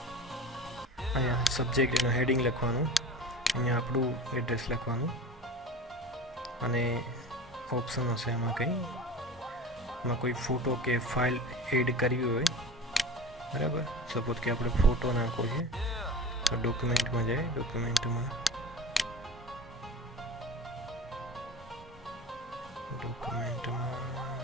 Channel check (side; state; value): both; normal; correlation 0.35